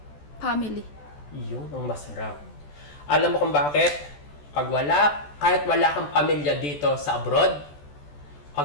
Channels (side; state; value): right; late; 14 ms